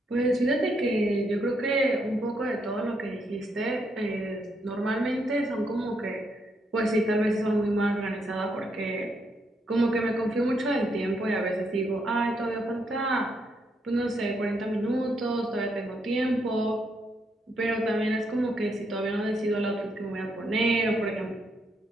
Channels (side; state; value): both; normal; correlation 0.77